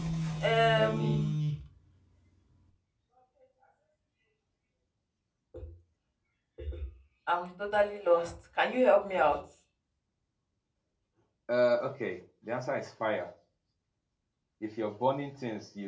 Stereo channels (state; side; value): identical; both; correlation 1.00